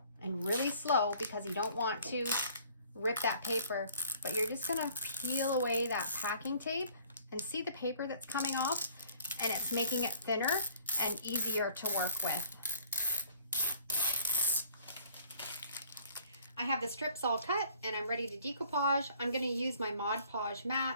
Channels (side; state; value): both; inverted; correlation -0.56